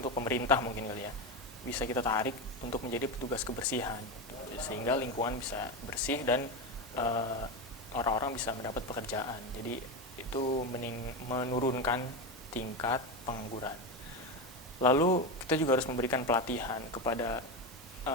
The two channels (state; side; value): normal; both; correlation 0.15